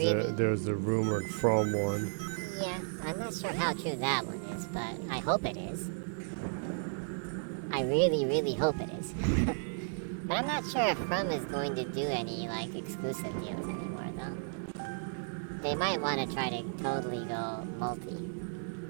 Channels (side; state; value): left; silent; digital silence